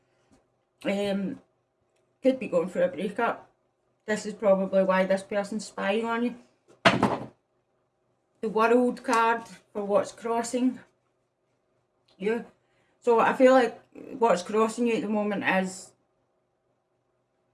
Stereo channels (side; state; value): both; identical; correlation 1.00